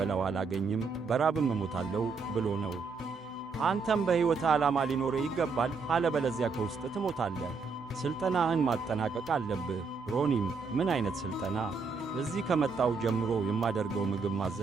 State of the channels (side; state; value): left; quieter; 4.8 dB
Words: አላገኝም፣ በራብም እሞታለሁ ብሎ ነው። አንተም በሕይወት ዓላማ ሊኖርህ ይገባል፣ አለበለዚያ ከውስጥ ትሞታለህ። ሥልጠናህን ማጠናቀቅ አለብህ። ሮኒም ምን ዓይነት ሥልጠና? እዚህ ከመጣው ጀምሮ የማደርገው ምግብ